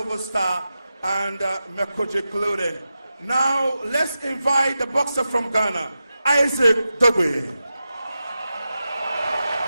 Star, and Mekoji Clothing. Now, let's invite the boxer from Ghana, Isaac Dogbe.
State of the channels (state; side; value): inverted; both; correlation -0.91